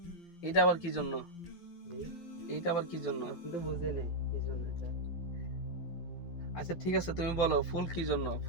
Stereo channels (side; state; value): right; late; 12 ms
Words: এটা আবার কি জন্য? এইটা আবার কি জন্য? আপনি তো বুঝেন কি জন্য এটা। আচ্ছা ঠিক আছে, তুমি বলো ফুল কি জন্য?